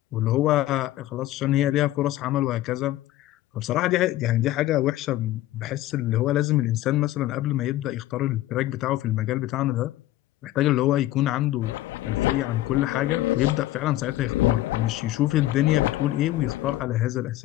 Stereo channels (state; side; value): quieter; right; 15.3 dB